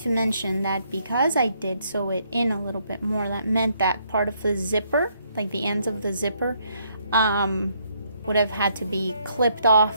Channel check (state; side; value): inverted; both; correlation -0.71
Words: to mention that because I did sew it in a little bit more, that meant that part of the zipper, like the ends of the zipper, would have had to be clipped off,